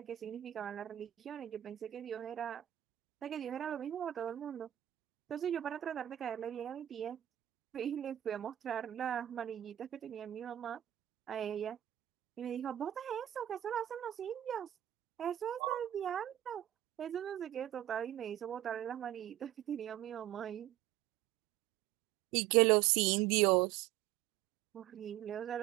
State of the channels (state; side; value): quieter; left; 12.7 dB